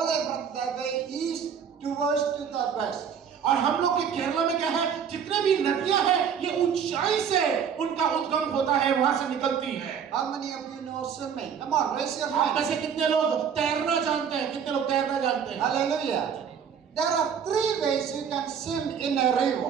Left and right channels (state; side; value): quieter; left; 7.5 dB